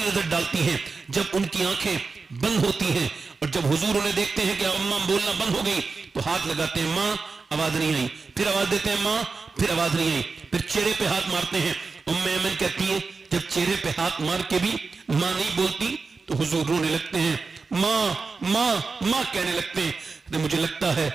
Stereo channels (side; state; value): left; quieter; 4.4 dB